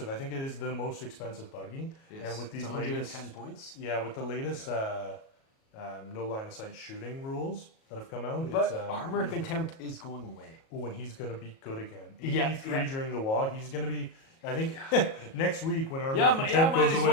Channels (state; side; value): late; right; 37 ms